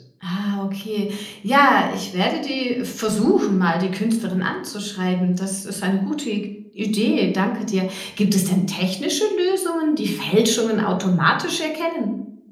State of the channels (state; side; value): identical; both; correlation 1.00